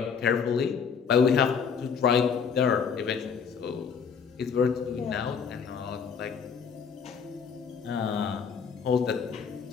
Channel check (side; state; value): right; quieter; 6.4 dB